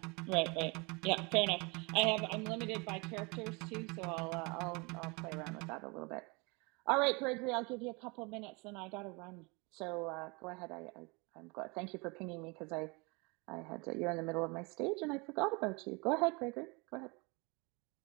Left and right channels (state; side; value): quieter; left; 28.6 dB